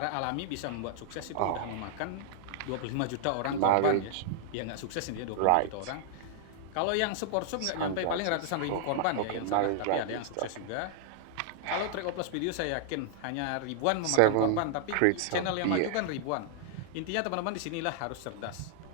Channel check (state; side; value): different; both; correlation -0.01